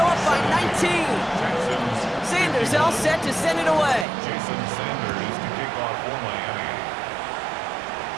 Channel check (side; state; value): left; drops out; at 4.0 s